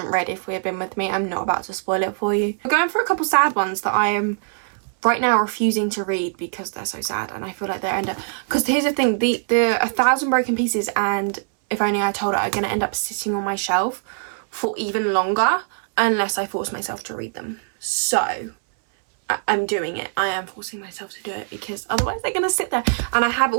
read If We Had Been With Me, I'm not about to spoil it for you. I'm going for a couple sad ones that I am right now refusing to read because they're so sad, and I feel like they're end up, because here's the thing, the 1,000 Broken Pieces and If Only I Told Her are going to end up sitting on my shelf for even longer unless I force myself to read them. So I'm doing it. I am forcing myself to do it because otherwise they're going to sit there. And I have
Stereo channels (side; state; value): left; silent; 64 dB below the other